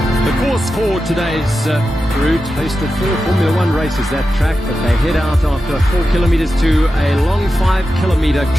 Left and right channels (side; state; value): both; normal; correlation 0.91